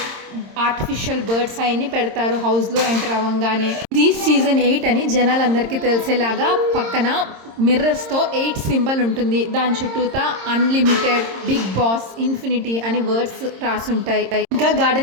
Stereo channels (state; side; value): late; left; 26 ms